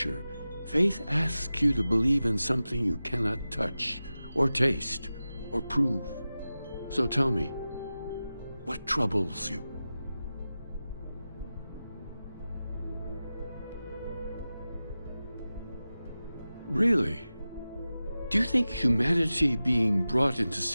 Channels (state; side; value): inverted; both; correlation -0.95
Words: faith asks you to believe in something you cannot touch, or taste, or prove. So tell me, what troubles you? Really? Do you think humanity being brought into